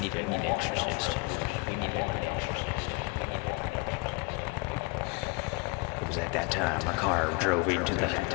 an exorcist. It was at that time our car drove into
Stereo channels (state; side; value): quieter; right; 27.4 dB